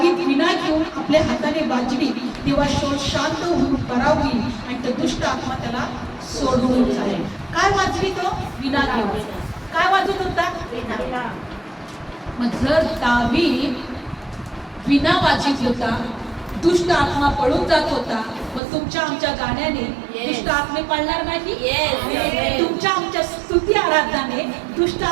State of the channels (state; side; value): drops out; left; at 18.6 s